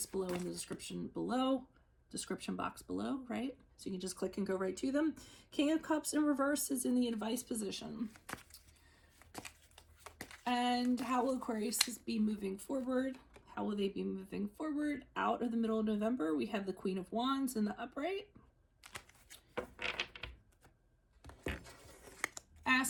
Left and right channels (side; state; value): both; identical; correlation 1.00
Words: below in the description box below, right? So you can just click and go right to them. King of Cups in reverse is in the advice position. And how will Aquarius be moving forward? How will they be moving forward? Out of the middle of November, we have the Queen of Wands in the upright.